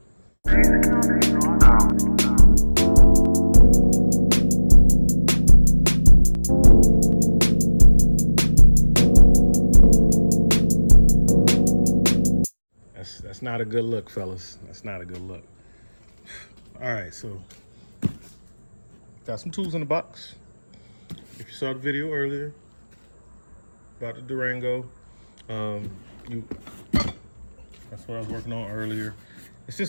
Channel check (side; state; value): both; inverted; correlation -1.00